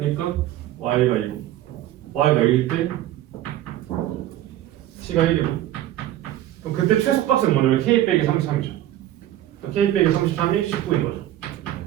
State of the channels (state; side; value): quieter; left; 13.4 dB